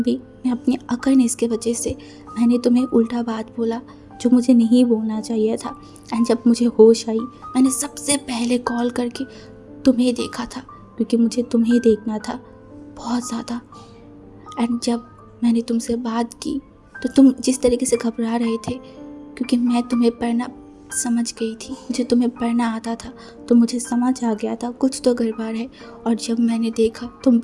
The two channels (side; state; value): both; identical; correlation 1.00